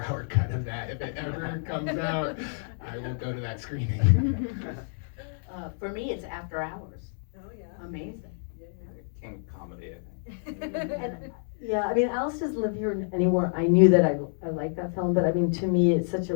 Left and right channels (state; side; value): silent; right; 59 dB below the other